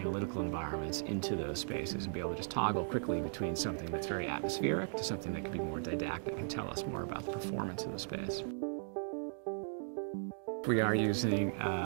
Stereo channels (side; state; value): left; silent; digital silence